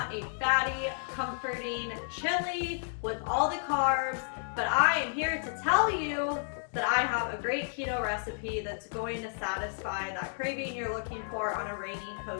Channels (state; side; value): silent; right; digital silence